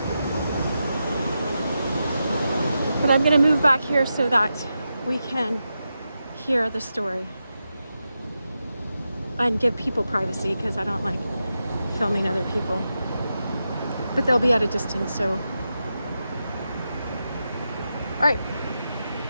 But I'm gonna move back here so that we can hear the story. And give people privacy because I don't like filming other people. But they'll be at a distance, so. All right.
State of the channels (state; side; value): inverted; both; correlation -0.89